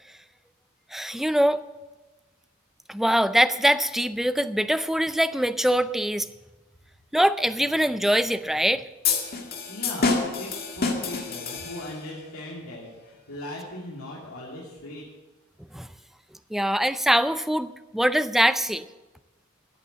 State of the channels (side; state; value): both; normal; correlation 0.85